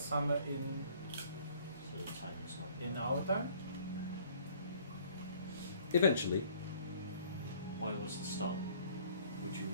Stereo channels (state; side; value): inverted; both; correlation -0.57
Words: So the time is not. in our time? Eventually, Why was the stop? Would you